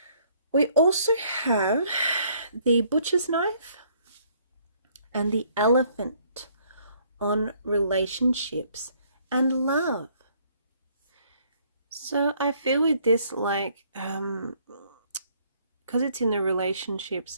We also have the butcher's knife and the elephant on relationships and love. So I feel with this, like, because it's in the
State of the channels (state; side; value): inverted; both; correlation -0.64